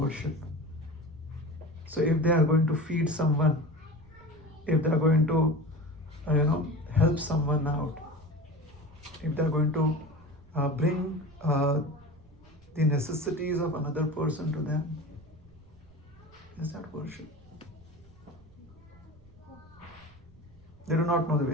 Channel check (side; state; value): right; noise; rumble, 26 dB below the sound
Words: So if they are going to feed someone, if they are going to help someone out, if they are going to bring the necessities of another person to them, is that worship? They do not know the